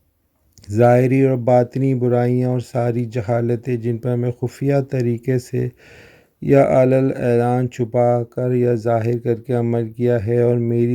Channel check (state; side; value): identical; both; correlation 1.00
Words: ظاہری اور باطنی برائیاں اور ساری جہالتیں جن پر میں خفیہ طریقے سے یا علی اعلان چھپا کر یا ظاہر کر کے عمل کیا ہے، اور